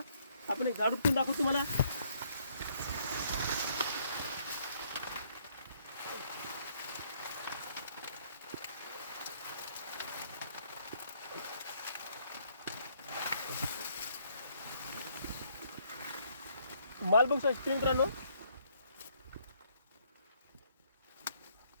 आपण एक झाड उपटून दाखवतो तुम्हाला. माल बघू शकता शेतकरी मित्रांनो,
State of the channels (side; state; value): both; inverted; correlation -0.68